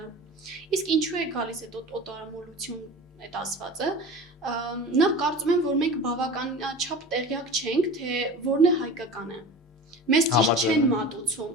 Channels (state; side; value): normal; both; correlation 0.35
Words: Իսկ ինչու է գալիս այդ օտարամոլություն այդ ասվածը, նախ կարծում եմ, որ մենք բավականաչափ տեղյակ չենք, թե որն է հայկականը։ Մեզ ճիշտ չեն մատուցում։